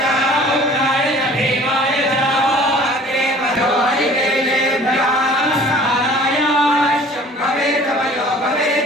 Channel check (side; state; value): both; normal; correlation 0.49